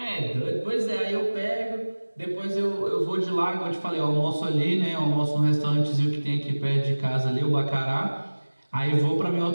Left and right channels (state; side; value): inverted; both; correlation -1.00